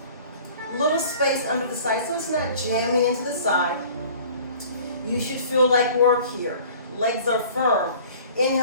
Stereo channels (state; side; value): inverted; both; correlation -0.48